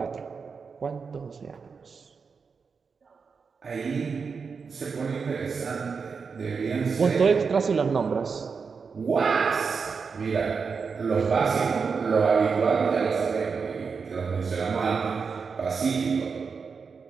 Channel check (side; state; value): left; quieter; 5.4 dB